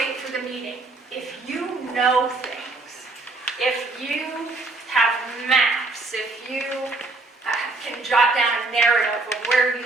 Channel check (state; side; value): quieter; left; 3.3 dB